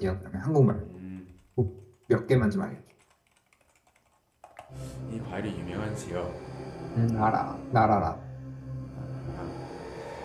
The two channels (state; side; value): identical; both; correlation 1.00